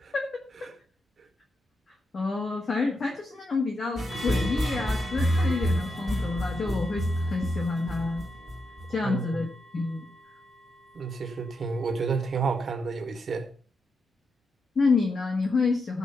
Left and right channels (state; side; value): normal; both; correlation 0.84